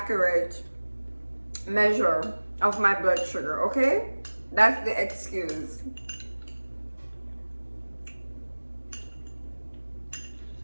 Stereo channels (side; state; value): both; inverted; correlation -1.00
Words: measure of my blood sugar, okay? That's the excuse.